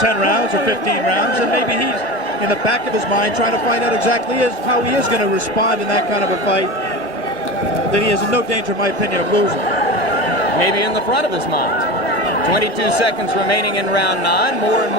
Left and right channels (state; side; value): normal; both; correlation 0.27